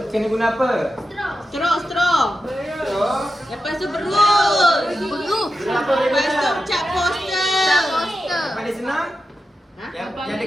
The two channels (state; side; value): normal; both; correlation 0.90